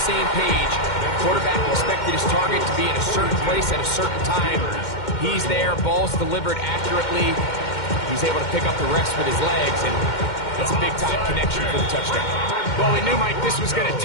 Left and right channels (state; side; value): late; right; 2.1 ms